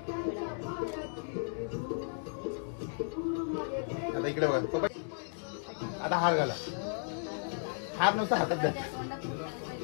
आता इकडे बघा. आता हार घाला. हार नुसता हातात द्या.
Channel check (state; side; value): silent; right; digital silence